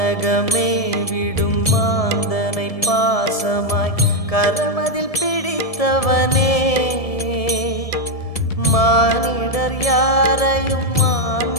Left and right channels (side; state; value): right; late; 1.7 ms